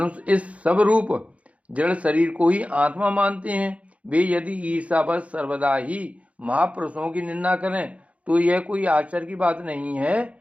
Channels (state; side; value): late; left; 0.065 ms